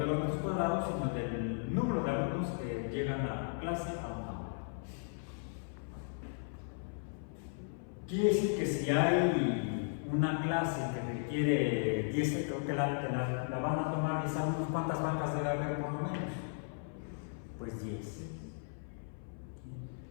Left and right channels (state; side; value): silent; right; 54 dB below the other